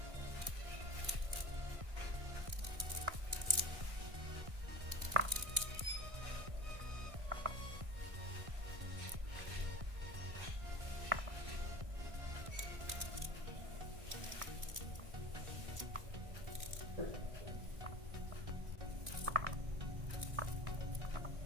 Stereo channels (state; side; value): late; left; 1.6 ms